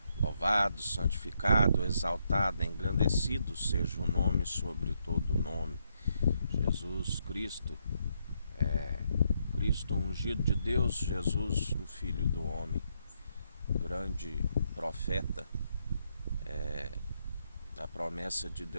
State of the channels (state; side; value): inverted; both; correlation -0.77